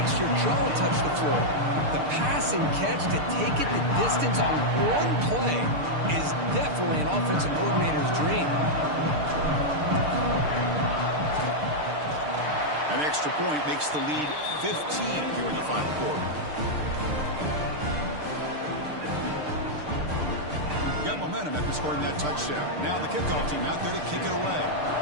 your jaw touch the floor. The pass and catch to take it the distance on one play is definitely an offensive coordinator's dream. An extra point makes the lead 15 here in the final quarter. Got momentum after scoring that touchdown. Now the kickoff team out there to kick it away.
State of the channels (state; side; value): late; left; 6.7 ms